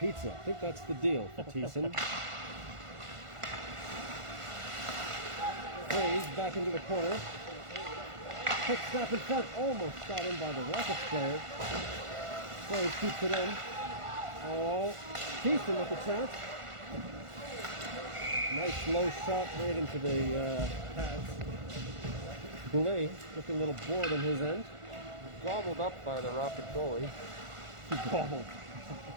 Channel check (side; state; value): left; late; 1.5 ms